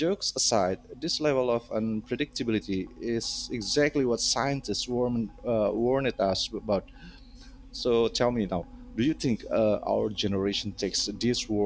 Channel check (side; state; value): both; identical; correlation 1.00